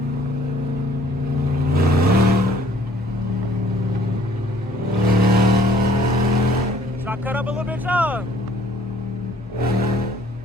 Cut up a little bit, y'all.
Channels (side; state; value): both; normal; correlation 0.59